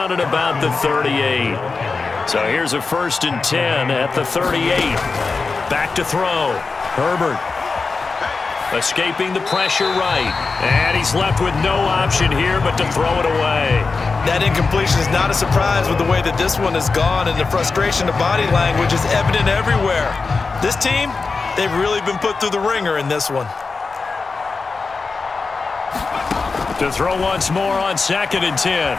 at about the 38. So here's a 1st and 10 at the 38. Back to throw. Herbert escaping the pressure right. And he's left with no option here but to throw it away. That incompletion is not a surprise with the way that this one has gone, and the frustration of body language is evident everywhere. This team, they've really been put through the ringer in this one. To throw once more on 2nd and 10.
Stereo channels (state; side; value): quieter; right; 4.3 dB